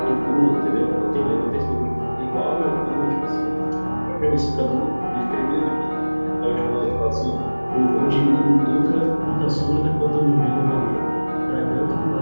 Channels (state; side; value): inverted; both; correlation -1.00